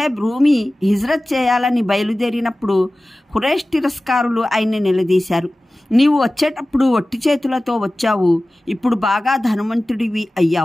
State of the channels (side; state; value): both; normal; correlation 0.97